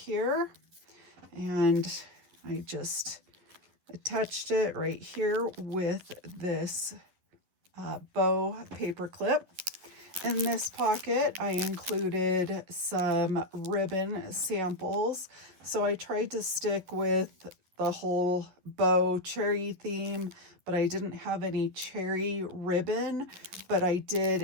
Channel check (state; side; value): late; left; 11 ms